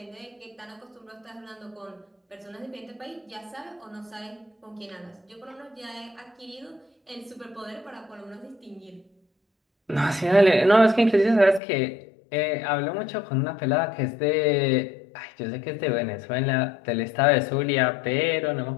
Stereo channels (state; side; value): drops out; right; at 11.6 s